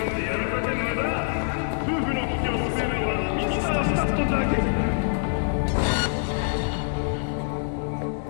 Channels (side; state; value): right; silent; 62 dB below the other